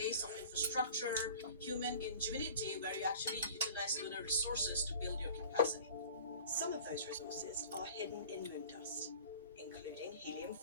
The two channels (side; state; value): both; inverted; correlation -0.44